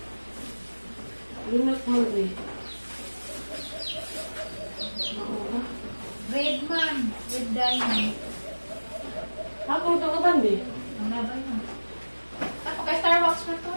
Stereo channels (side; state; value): both; inverted; correlation -1.00